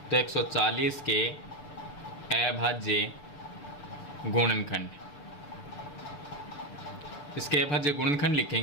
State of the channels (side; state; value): right; late; 6.9 ms